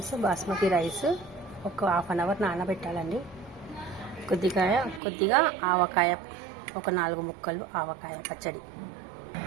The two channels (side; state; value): left; drops out; at 5.0 s